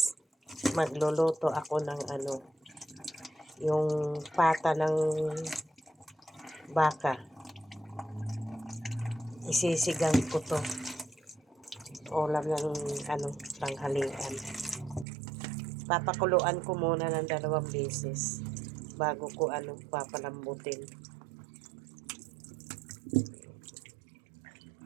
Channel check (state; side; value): drops out; left; at 15.1 s